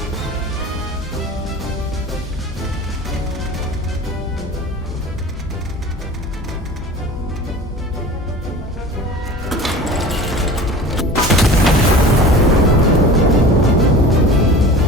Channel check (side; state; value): both; normal; correlation 0.39